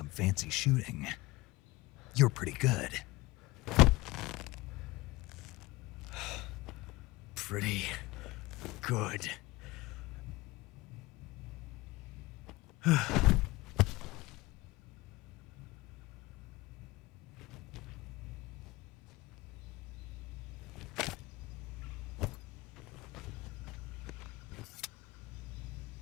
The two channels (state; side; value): quieter; right; 20.9 dB